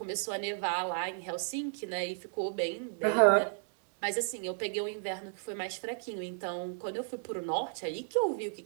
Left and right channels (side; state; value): left; silent; digital silence